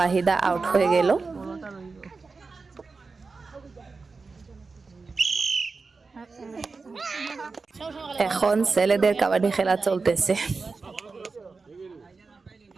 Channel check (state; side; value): quieter; left; 4.3 dB